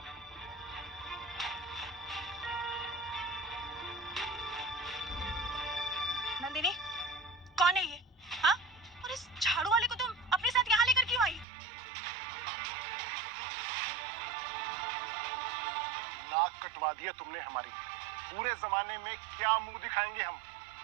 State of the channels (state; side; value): drops out; left; at 11.5 s